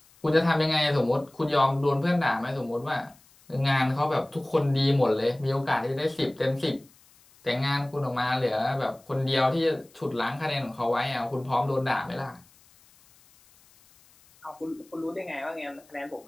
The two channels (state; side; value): noise; left; hiss, 29 dB below the sound